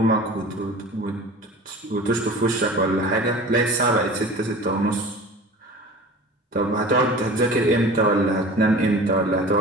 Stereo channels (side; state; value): both; normal; correlation 0.39